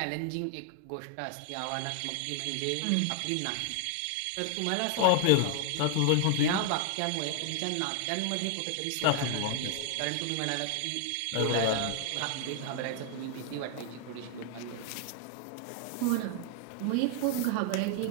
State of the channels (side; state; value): both; different; correlation 0.00